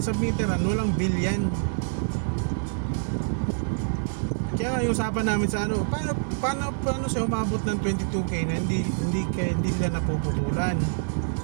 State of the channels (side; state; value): left; silent; digital silence